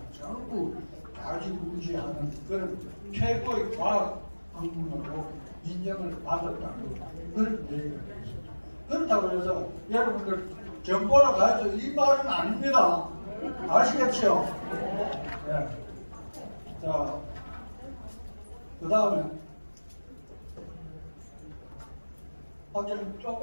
전부 다지구지하는 그런 최고의 과학 학문으로 인정을 받았다는 그런 얘기가 되겠습니다. 그렇다고 해서 여러분들 정보를 가해서 이 말은 아닙니다. 아시겠죠? 네. 자, 그 다음에 확인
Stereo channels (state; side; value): inverted; both; correlation -1.00